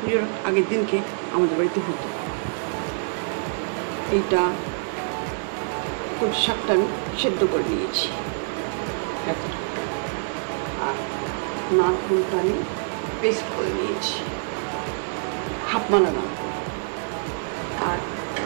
আগের দিনকে আমাদের বাড়িতে হতো। এইটা কচু শাকটা আমি সেদ্ধ করে নিয়েছি, আর নারকেলটা আমি পেস্ট করে নিয়েছি হাফ মালানো, আর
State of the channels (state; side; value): silent; left; digital silence